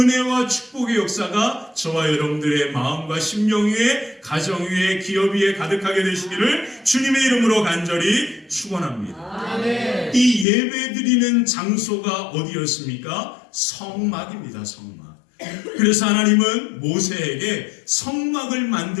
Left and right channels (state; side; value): drops out; right; at 10.5 s